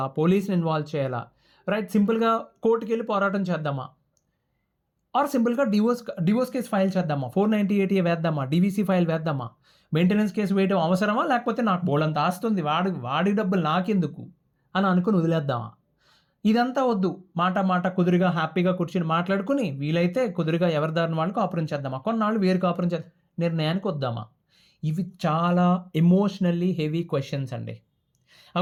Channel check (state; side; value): identical; both; correlation 1.00